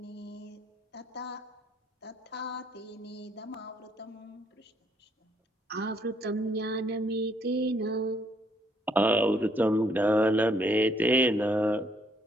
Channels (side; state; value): both; normal; correlation 0.68